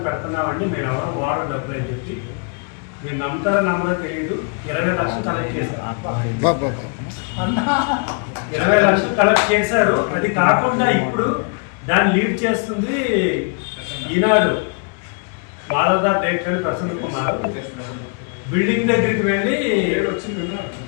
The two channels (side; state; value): right; quieter; 37.3 dB